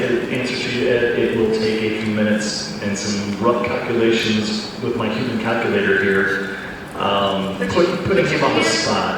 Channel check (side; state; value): both; identical; correlation 1.00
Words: the answer to you, Ed. It will take a few minutes and some rough calculations with my human calculator here, putting him on the